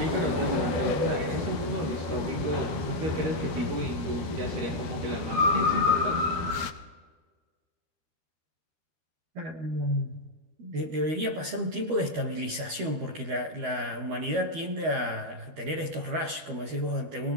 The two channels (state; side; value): late; left; 13 ms